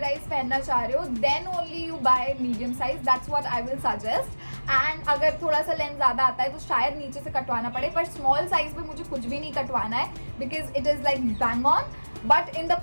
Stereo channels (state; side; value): inverted; both; correlation -1.00